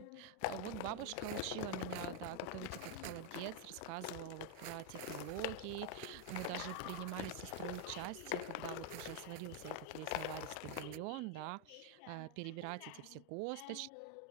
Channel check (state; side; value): different; both; correlation 0.01